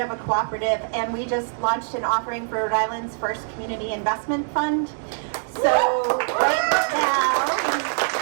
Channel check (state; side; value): silent; left; digital silence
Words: a cooperative, and we just launched an offering for Rhode Island's first community investment fund. So right now,